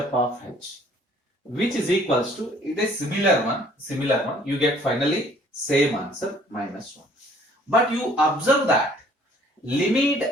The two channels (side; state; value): both; normal; correlation 0.57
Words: of h, which is equals to, it is similar one, you get finally same answer, minus 1. But you observe that